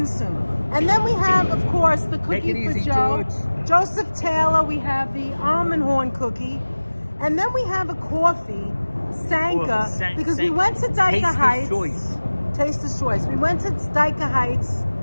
soon. And then we have, of course, the cookie for Joe. George. Joseph Taylor. We have the almond horn cookie. And then we have a coffee, Sanka, because we went to Dyker Heights. Taster's Choice. We went to Dyker Heights.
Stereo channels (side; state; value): both; inverted; correlation -1.00